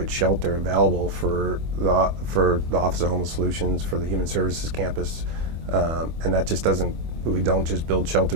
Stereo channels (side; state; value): left; late; 25 ms